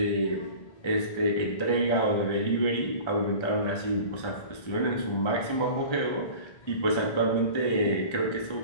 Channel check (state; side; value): late; right; 1.3 ms